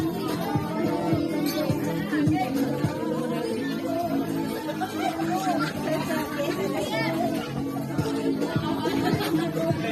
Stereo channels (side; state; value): both; identical; correlation 1.00